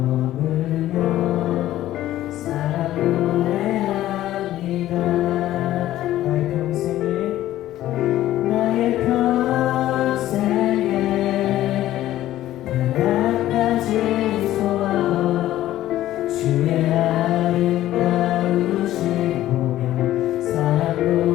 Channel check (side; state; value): right; quieter; 14.0 dB